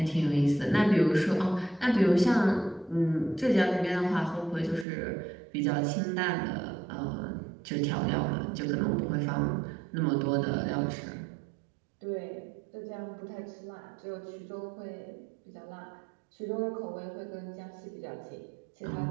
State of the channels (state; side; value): drops out; left; at 4.9 s